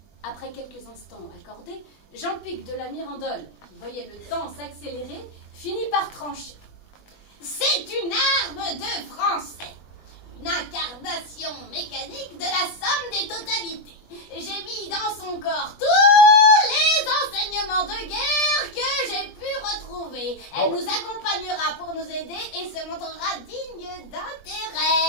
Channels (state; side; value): late; right; 20 ms